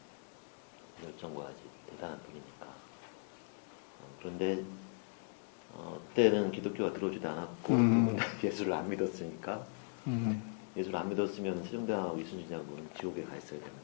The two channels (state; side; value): silent; right; 52 dB below the other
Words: 열정과 이제 대단한 분이니까 그런데 그때는 기독교가 들어오지도 않았고 두 분 다 예수를 안 믿었으니까 예수를 안 믿었으면 세종대왕하고 이순신 장군은 지옥에 가 있어야 되는